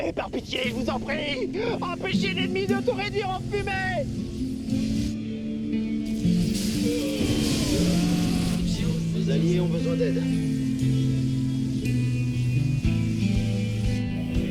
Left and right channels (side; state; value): both; identical; correlation 1.00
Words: par pitié, je vous en prie, empêchez l'ennemi de tout réduire en fumée. Vos alliés ont besoin d'aide.